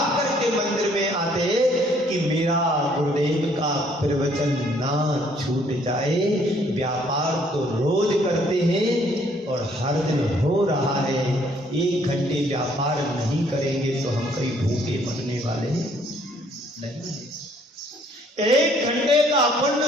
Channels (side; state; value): both; normal; correlation 0.63